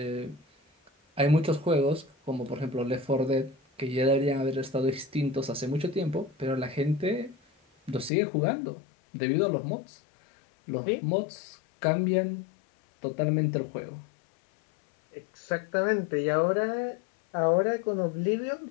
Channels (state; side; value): drops out; right; at 8.1 s